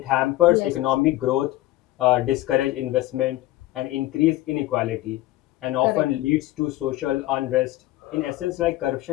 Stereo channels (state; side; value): quieter; right; 16.6 dB